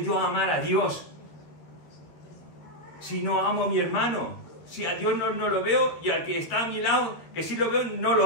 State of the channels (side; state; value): right; late; 12 ms